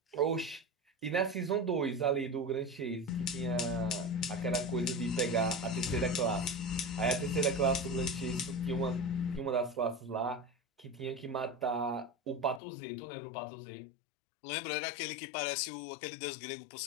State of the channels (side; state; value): right; drops out; at 12.6 s